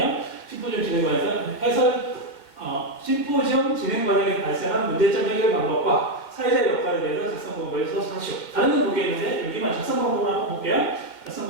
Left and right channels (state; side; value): late; right; 2.1 ms